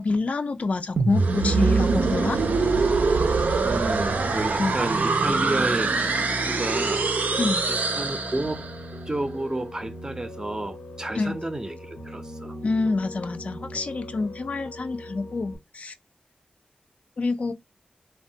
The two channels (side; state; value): both; normal; correlation 0.79